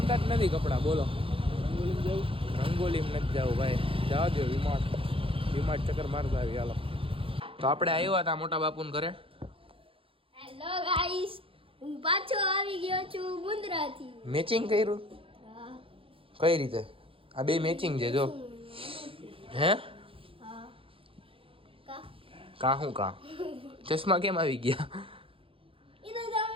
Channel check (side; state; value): left; late; 0.26 ms